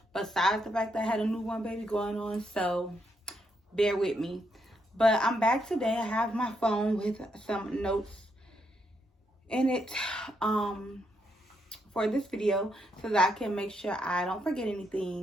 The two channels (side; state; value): both; normal; correlation 0.78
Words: besides the fact that I had a newborn baby going on, so bear with me. But I'm back today. I have my phone with some notes in it for this video so that I can make sure I don't forget